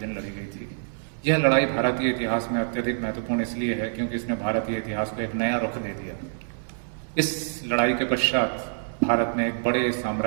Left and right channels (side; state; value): left; silent; 61 dB below the other